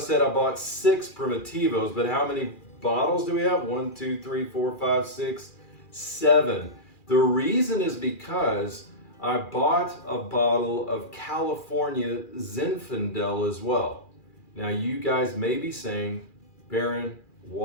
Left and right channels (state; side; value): late; right; 2.4 ms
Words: I bought 6 Primitivos, but how many bottles do we have? 1, 2, 3, 4, 5, 6, 7. The reason is because I bought a bottle of California Zinfandel as well. Now you guys may be saying, Barron,